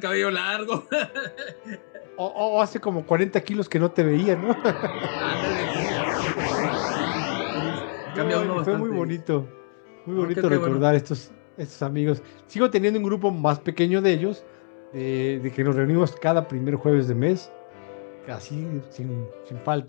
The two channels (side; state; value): right; silent; 62 dB below the other